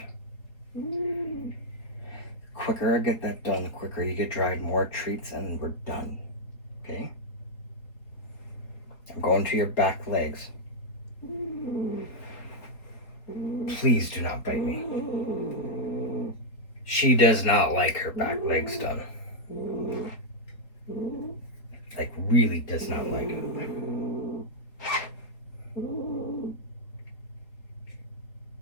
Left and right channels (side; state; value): right; late; 4.3 ms